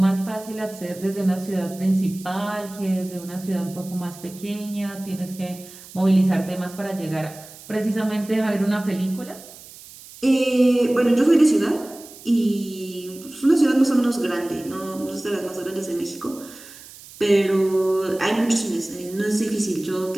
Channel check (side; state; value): right; noise; hiss, 18 dB below the sound